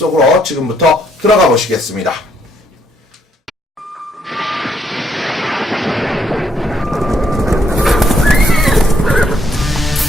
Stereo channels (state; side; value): normal; both; correlation 0.72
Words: 지금부터 들어가 보시겠습니다.